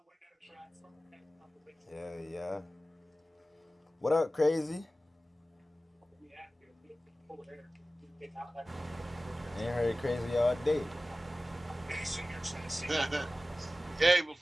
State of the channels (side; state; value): both; normal; correlation 0.96